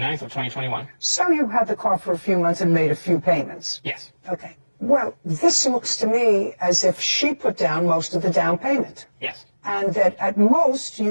of 2021. So you had the car for a few months and made a few payments. Yes. Okay. Well, this looks to me as if she put down most of the down payment. Yes. And that at most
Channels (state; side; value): inverted; both; correlation -1.00